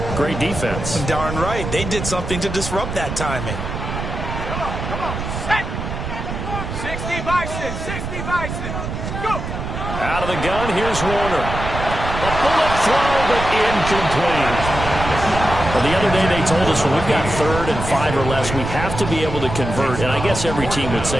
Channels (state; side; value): noise; right; rumble, 6 dB below the sound